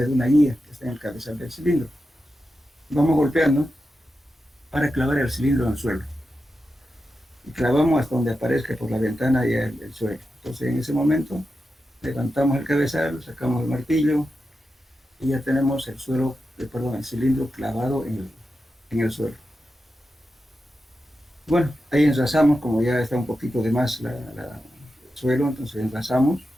de una guía que está en el cabezal del cilindro. Vamos golpeando para clavar el cilindro en el suelo. Y clavamos hasta donde aparezca por la ventana ya el suelo. Entonces, en ese momento, levantamos el cabezal, sacamos el martillo, y ya tenemos el cilindro clavado en el suelo. Bueno, ahí enlazamos, como ya está un poquito de más el suelo, entonces enlazamos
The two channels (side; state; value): both; normal; correlation 0.90